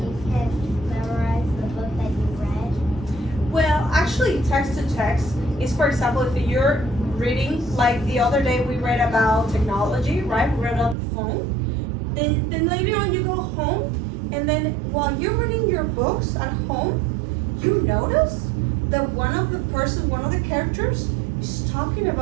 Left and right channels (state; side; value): drops out; left; at 11.0 s